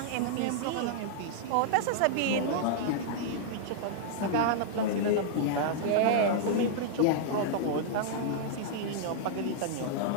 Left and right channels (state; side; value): different; both; correlation -0.02